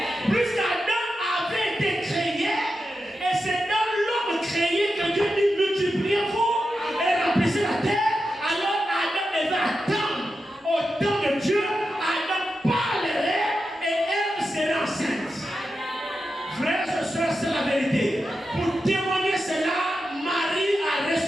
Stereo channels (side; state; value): both; normal; correlation 0.89